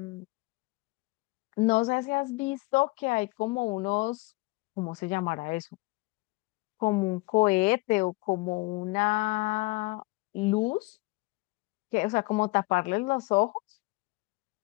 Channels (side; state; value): right; quieter; 24.4 dB